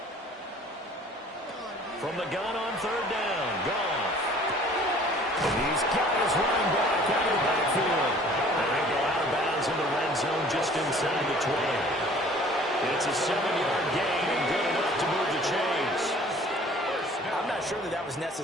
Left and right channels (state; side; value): normal; both; correlation 0.52